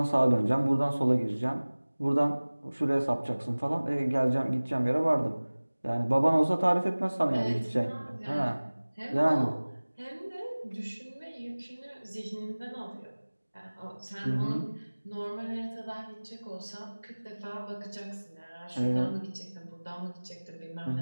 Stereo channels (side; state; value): both; inverted; correlation -1.00